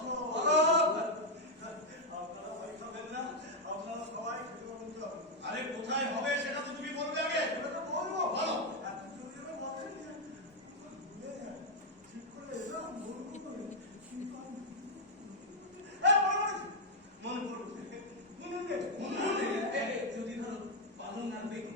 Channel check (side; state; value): both; normal; correlation 0.01